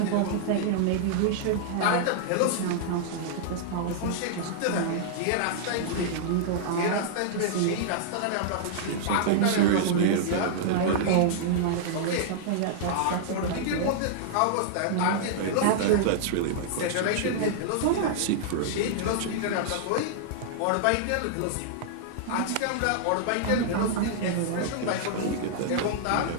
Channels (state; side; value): different; both; correlation -0.01